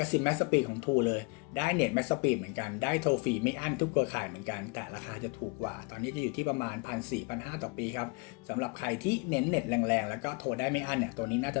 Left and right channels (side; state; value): right; quieter; 29.7 dB